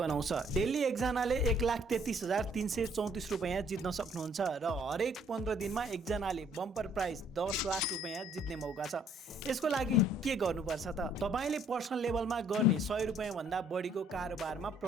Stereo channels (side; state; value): both; normal; correlation 0.63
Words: डेली एकजनाले 1,33,334 रुपैयाँ जित्न सक्नुहुन्छ र हरेक 15 दिनमा एकजनाले बम्पर प्राइज 10 लाख रुपैयाँ जित्ने मौका छ। यसको लागि के गर्नुपर्छ त? तपाईले पर्सनल लेभलमा गर्ने 100 रुपैयाँ भन्दा बढीको कारोबारमा